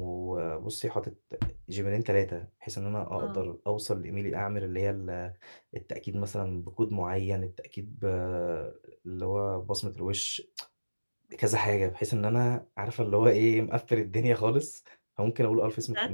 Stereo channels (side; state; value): both; inverted; correlation -1.00